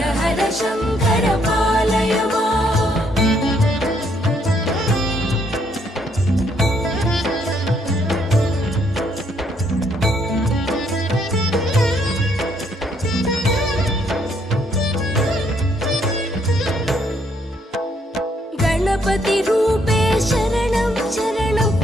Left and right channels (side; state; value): both; normal; correlation 0.70